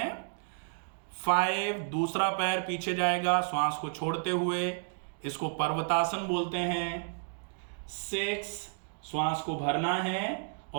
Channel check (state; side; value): silent; left; digital silence